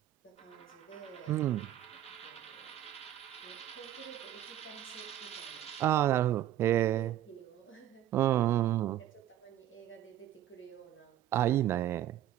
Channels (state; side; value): quieter; left; 12.5 dB